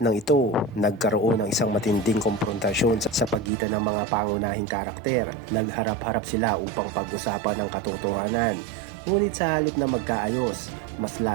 ito, nagkaroon ng isang matinding komprontasyon sa pagitan ng mga pangunahing karakter. Nagharap-harap sila upang pag-usapan ang katotohanan. Ngunit sa halip na magkaayos, mas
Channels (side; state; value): left; drops out; at 3.5 s